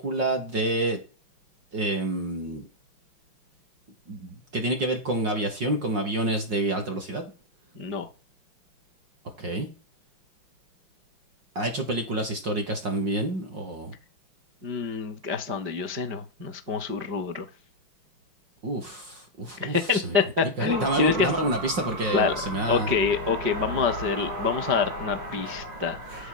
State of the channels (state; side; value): late; left; 5.5 ms